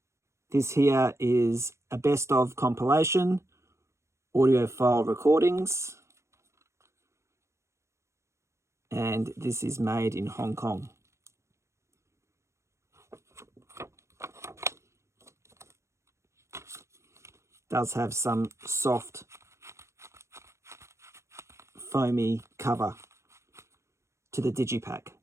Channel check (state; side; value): late; left; 0.14 ms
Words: This here is a best-of compilation, audiophile recordings, and this is made in Hong Kong. Does have some soft, foamy cover to the digipack.